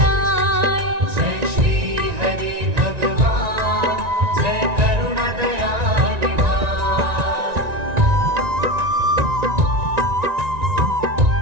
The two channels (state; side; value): late; left; 1.9 ms